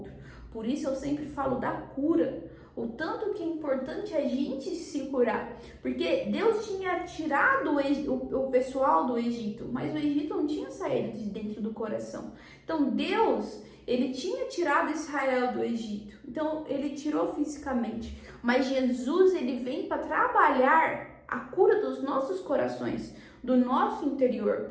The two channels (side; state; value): both; identical; correlation 1.00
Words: Por isso eu sempre falo da cura, o tanto que é importante a gente se curar, porque Deus tinha tirado o pessoal do Egito, mas o Egito não tinha saído de dentro do coração. Então Deus, ele tinha tirado Israel do Egito, então ele tirou fisicamente, mas Jesus, ele vem para trabalhar a cura dos nossos corações, do nosso interior,